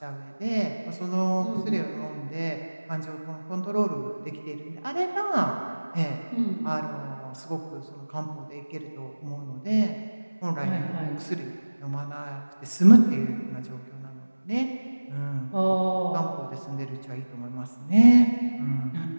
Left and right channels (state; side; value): inverted; both; correlation -1.00